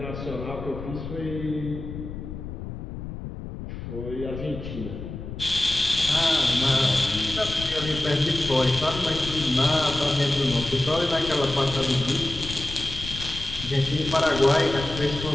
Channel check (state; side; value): noise; left; rumble, 9 dB below the sound